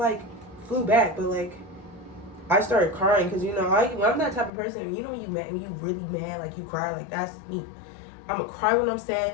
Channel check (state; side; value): drops out; right; at 4.5 s